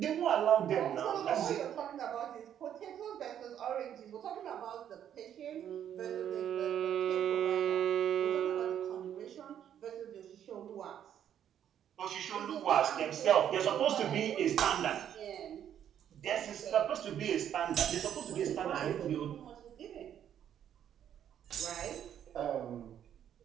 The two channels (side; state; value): left; quieter; 9.8 dB